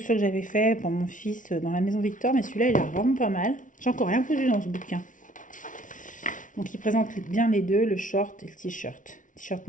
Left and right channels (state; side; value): late; right; 0.38 ms